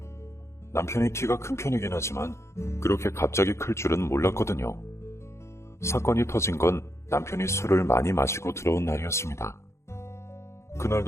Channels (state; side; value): late; right; 0.13 ms